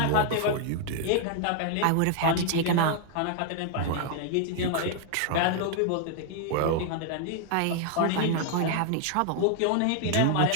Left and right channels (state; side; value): different; both; correlation 0.00